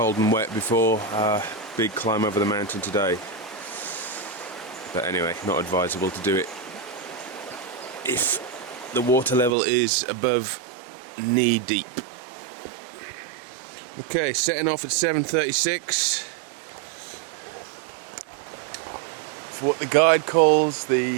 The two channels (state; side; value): drops out; left; at 9.5 s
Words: and wet before our big climb over the mountain today. But anyway, not advisable to do it if the water level is above knee deep. Okay, setting off at 7:36 for what the guide calls